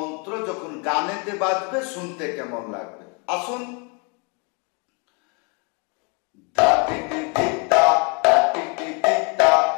যখন গানেতে বাজবে শুনতে কেমন লাগবে। আসুন।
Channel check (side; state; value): right; quieter; 33.7 dB